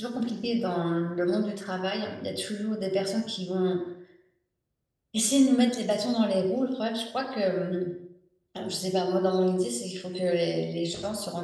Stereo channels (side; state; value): both; identical; correlation 1.00